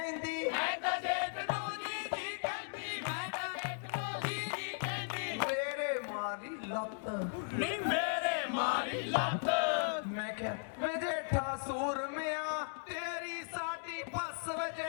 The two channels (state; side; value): silent; right; digital silence